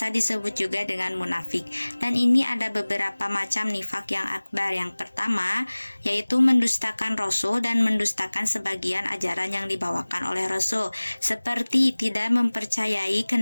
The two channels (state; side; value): inverted; both; correlation -1.00